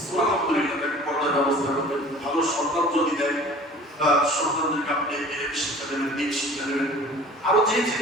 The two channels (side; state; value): both; normal; correlation 0.45